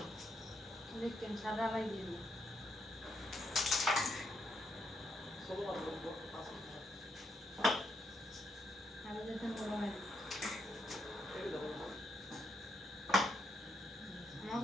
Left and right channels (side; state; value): both; normal; correlation 0.79